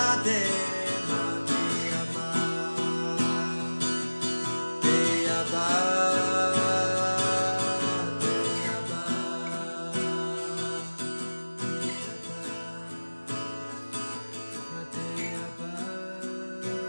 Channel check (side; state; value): both; inverted; correlation -1.00